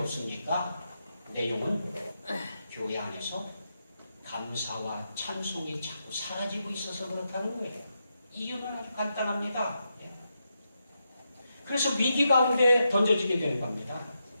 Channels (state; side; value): inverted; both; correlation -0.85